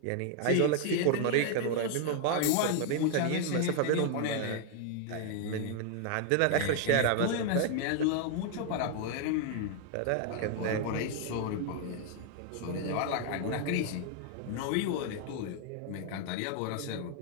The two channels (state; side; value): different; both; correlation 0.00